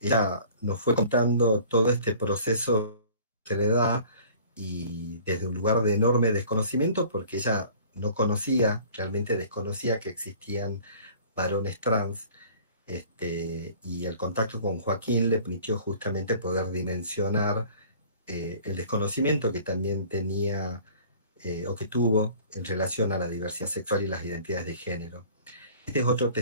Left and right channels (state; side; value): inverted; both; correlation -0.49